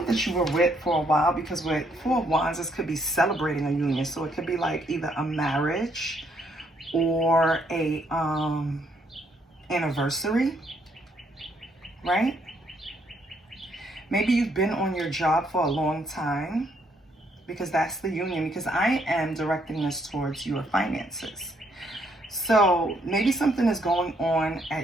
that you were with for a while, because with Four of Wands, this could be celebrating a union. So it could be like either a marriage or a anniversary, right? Maybe you've been on your job for a long time, because that's the union, because I am directing this towards your finances. So maybe something is going on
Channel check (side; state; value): both; normal; correlation 0.71